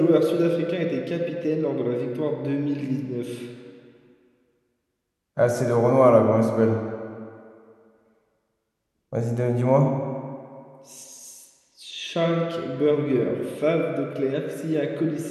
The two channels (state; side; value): identical; both; correlation 1.00